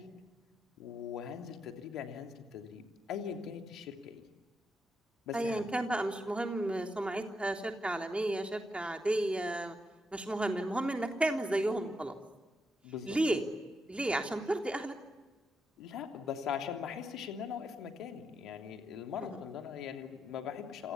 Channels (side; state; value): both; normal; correlation 0.82